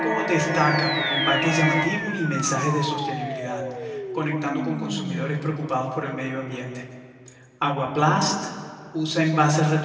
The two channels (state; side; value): identical; both; correlation 1.00